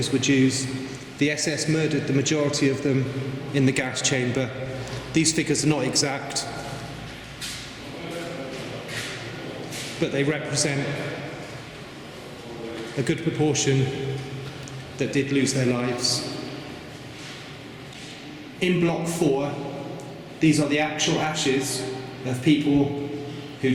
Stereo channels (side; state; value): both; identical; correlation 1.00